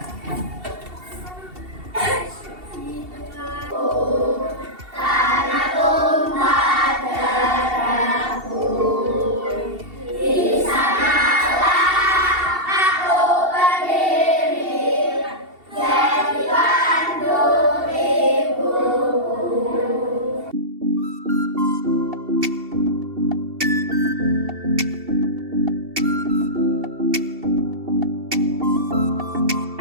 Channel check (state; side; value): late; left; 2.7 ms